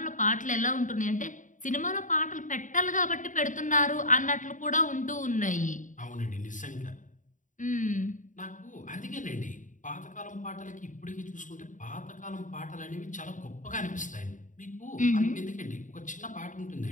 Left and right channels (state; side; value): late; right; 0.37 ms